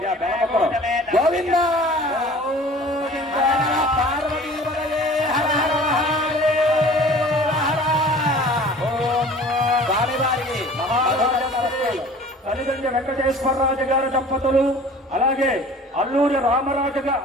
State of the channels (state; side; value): normal; both; correlation 0.45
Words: గోవింద తల్లిదండ్రి వెంకటేశ్వరరాజు గారి దంపతులు, అలాగే అల్లూరి రామరాజు